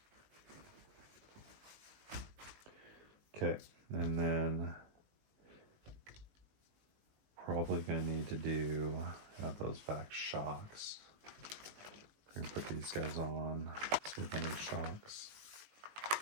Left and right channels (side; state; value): left; late; 19 ms